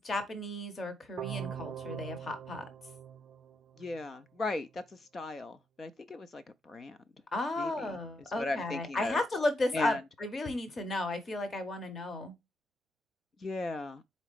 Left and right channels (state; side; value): normal; both; correlation 0.81